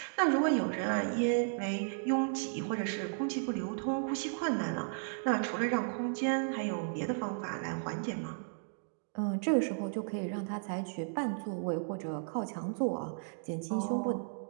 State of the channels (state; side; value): silent; left; digital silence